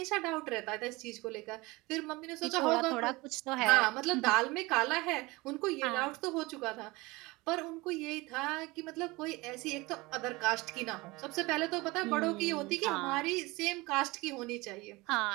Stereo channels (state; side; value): quieter; left; 22.6 dB